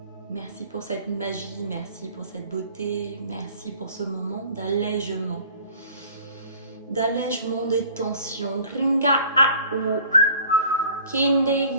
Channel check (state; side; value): inverted; both; correlation -0.49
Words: merci pour cette magie, merci pour cette beauté, merci pour ce moment d'allègement. D'allègement des tensions. Ringa a ou. Kinde